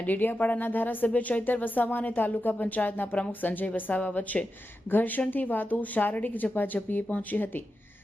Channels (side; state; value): both; normal; correlation 0.90